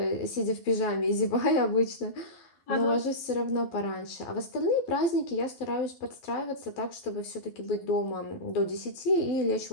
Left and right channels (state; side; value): late; right; 12 ms